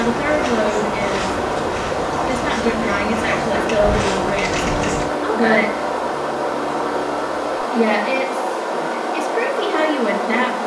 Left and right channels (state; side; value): identical; both; correlation 1.00